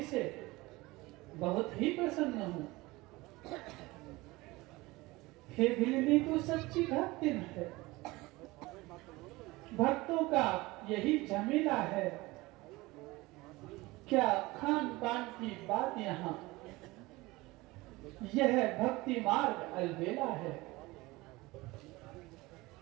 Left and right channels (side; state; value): left; quieter; 21.2 dB